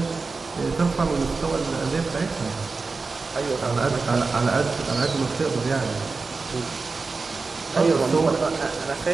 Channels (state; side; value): quieter; left; 4.2 dB